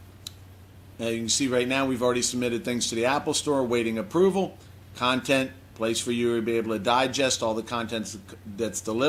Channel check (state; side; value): identical; both; correlation 1.00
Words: Now, you can see right now we've already submitted things to the Apple Store, waiting approval. Content, place for you to be able to digest all the content that's